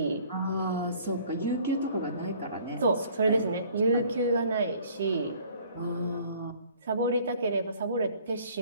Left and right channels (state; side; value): inverted; both; correlation -0.55